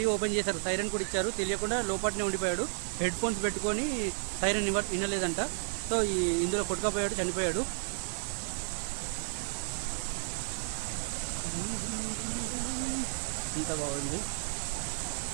ఓపెన్ చేశారు. సైరన్ కూడా ఇచ్చారు, తెలియకుండా లోపలనే ఉండిపోయాడు. హెడ్ ఫోన్స్ పెట్టుకొని సైరన్ వినలేదంట. సో ఇందులో కొట్టుకపోయాడు, చనిపోయాడు. ఇంత బాగుంది.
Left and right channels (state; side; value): silent; left; digital silence